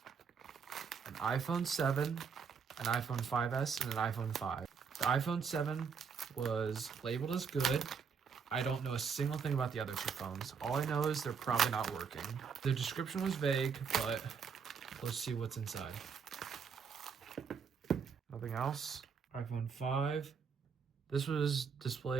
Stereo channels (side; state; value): left; quieter; 6.2 dB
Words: An iPhone 7, an iPhone 5S, and an iPhone 5. The iPhone 7 was labeled as good. I don't know a single thing about the other 2 phones. All I know is they're probably not working. The description was vague, but let's see what's inside. Nothing else. iPhone 5. This was